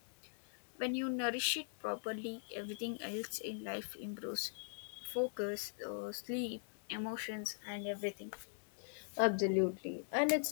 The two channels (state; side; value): silent; right; digital silence